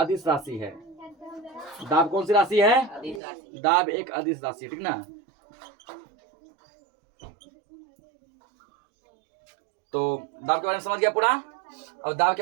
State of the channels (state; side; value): drops out; left; at 3.2 s